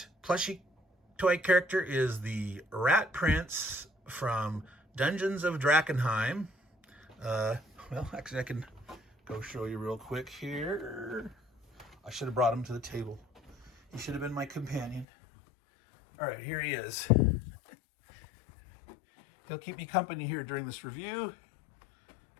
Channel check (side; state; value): right; drops out; at 15.1 s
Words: plushy toy character is the Rat Prince from Dungeons of Drakkenheim. Well, actually, I can go show you real quick here. I should have brought him to the table. He should have been my companion. All right, here he is. He'll keep me company here during this review.